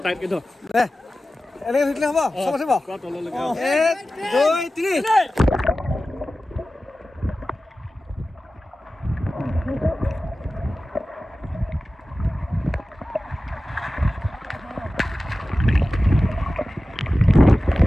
টাইটকৈ ধৰ। এনেকৈ ধৰিলে হ'ব? চব আছে বাৰু? 1, 2, 3।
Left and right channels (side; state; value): both; normal; correlation 0.95